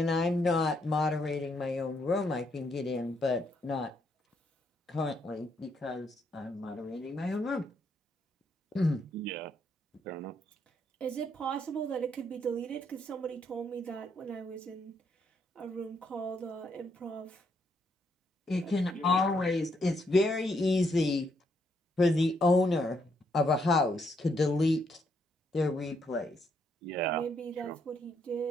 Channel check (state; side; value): normal; both; correlation 0.74